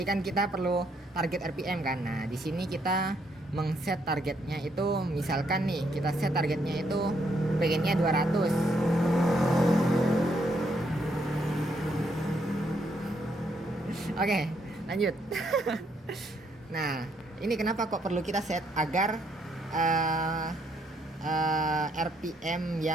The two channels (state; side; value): normal; both; correlation 0.73